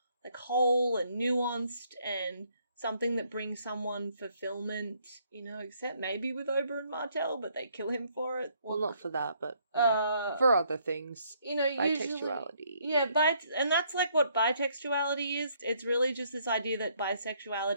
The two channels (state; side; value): inverted; both; correlation -0.68